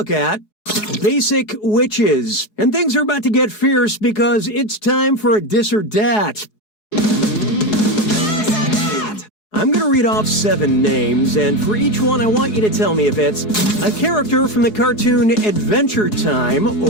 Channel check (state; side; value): late; right; 4.7 ms